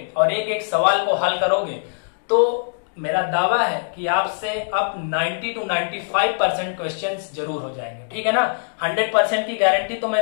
और एक एक सवाल को हल करोगे, तो मेरा दावा है कि आपसे अब 90 to 95% क्वेश्चंस जरूर हो जाएंगे। ठीक है ना, 100% की गारंटी तो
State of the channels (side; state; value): right; silent; digital silence